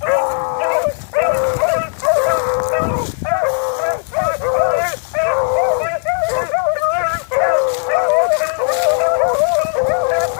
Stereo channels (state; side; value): silent; right; 59 dB below the other